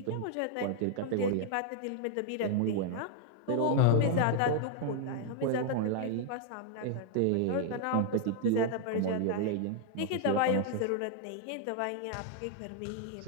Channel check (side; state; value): both; different; correlation 0.00